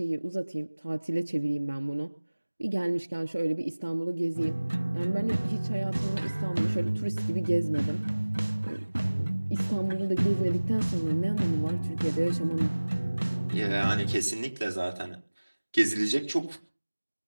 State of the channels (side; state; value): both; inverted; correlation -1.00